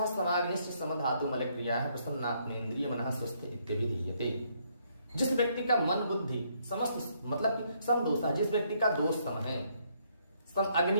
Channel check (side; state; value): both; inverted; correlation -0.71